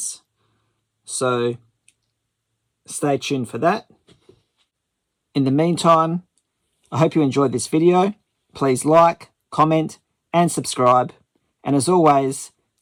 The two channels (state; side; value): identical; both; correlation 1.00